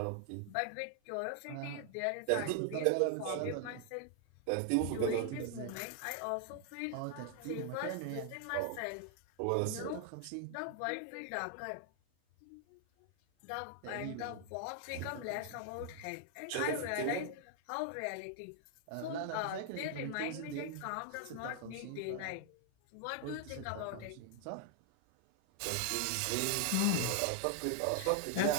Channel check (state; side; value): different; both; correlation 0.00